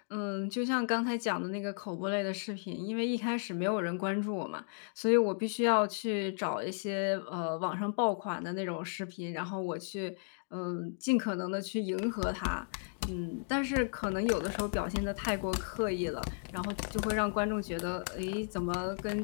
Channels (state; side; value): silent; right; digital silence